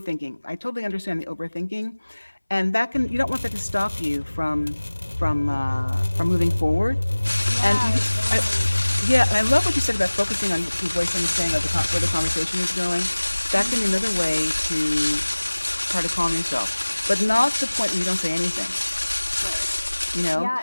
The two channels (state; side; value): inverted; both; correlation -1.00